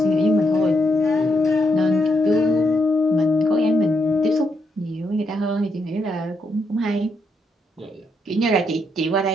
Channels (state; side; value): normal; both; correlation 0.78